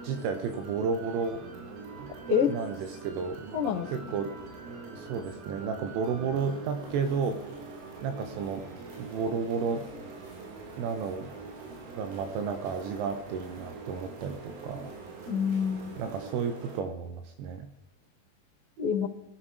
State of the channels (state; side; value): late; left; 21 ms